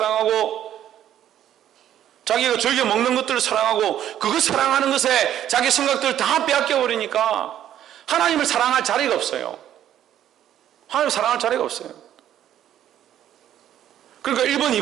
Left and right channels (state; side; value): quieter; left; 11.2 dB